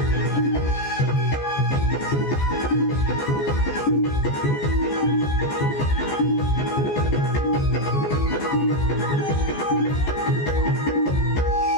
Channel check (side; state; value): right; late; 14 ms